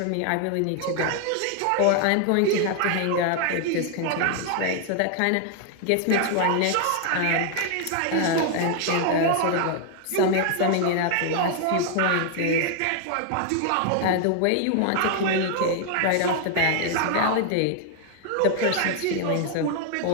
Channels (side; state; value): both; different; correlation 0.00